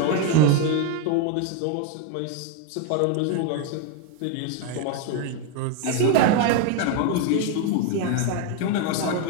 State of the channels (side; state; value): both; different; correlation 0.01